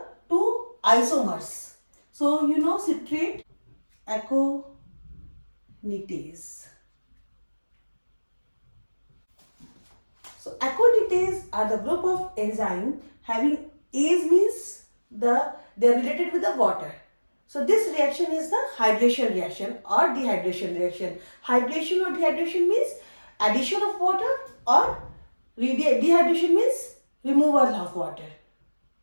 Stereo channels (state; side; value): inverted; both; correlation -1.00